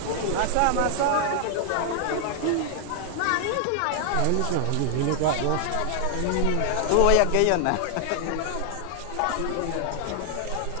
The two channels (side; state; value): both; different; correlation 0.00